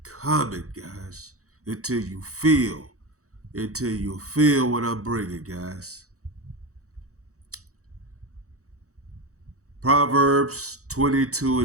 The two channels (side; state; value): left; late; 0.65 ms